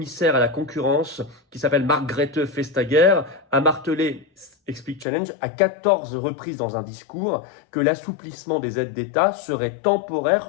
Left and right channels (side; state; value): right; drops out; at 5.1 s